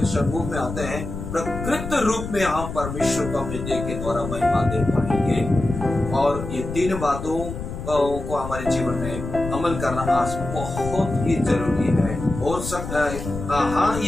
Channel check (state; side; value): noise; left; rumble, 7 dB below the sound